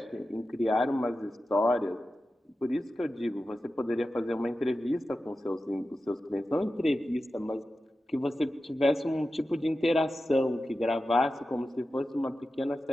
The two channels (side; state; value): both; normal; correlation 0.93